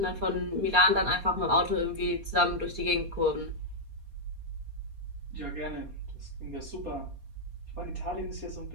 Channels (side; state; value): left; late; 4.2 ms